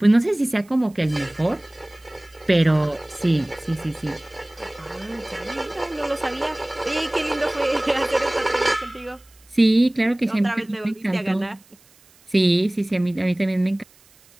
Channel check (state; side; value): noise; right; hiss, 29 dB below the sound